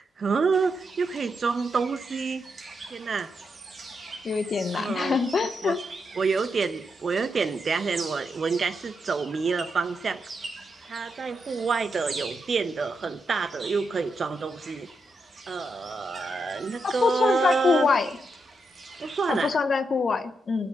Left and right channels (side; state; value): both; normal; correlation 0.83